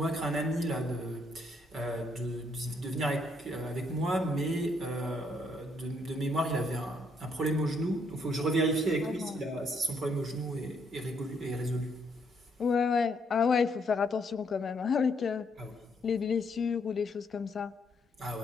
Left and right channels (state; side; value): normal; both; correlation 0.72